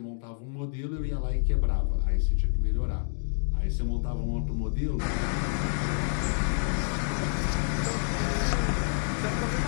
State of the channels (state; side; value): silent; right; digital silence